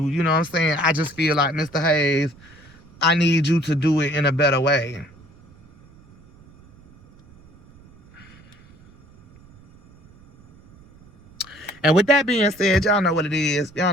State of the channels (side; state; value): right; noise; rumble, 26 dB below the sound